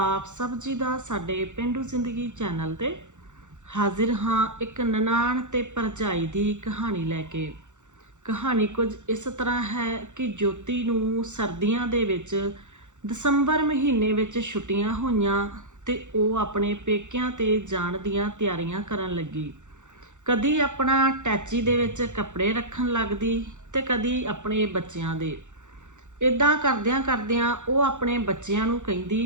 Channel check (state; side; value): late; left; 0.85 ms